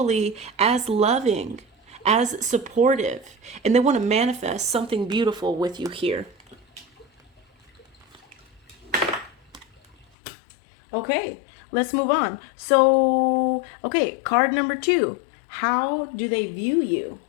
as loving, as supportive, and they want to manifest something beautiful with you here. Okay, let's move on. So, okay, card number 2. How do they view you?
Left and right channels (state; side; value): drops out; right; at 10.1 s